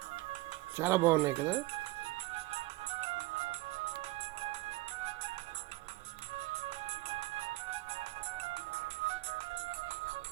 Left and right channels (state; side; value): quieter; left; 19.5 dB